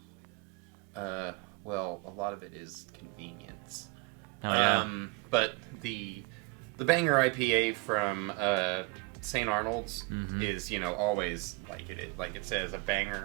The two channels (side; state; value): left; quieter; 25.1 dB